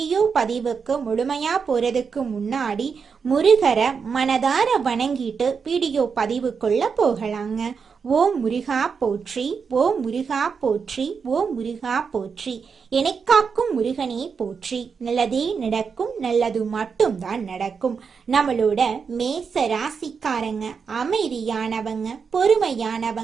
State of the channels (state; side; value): quieter; left; 5.8 dB